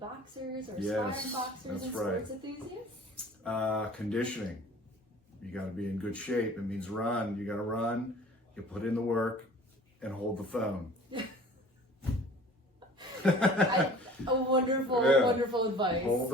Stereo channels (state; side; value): normal; both; correlation 0.46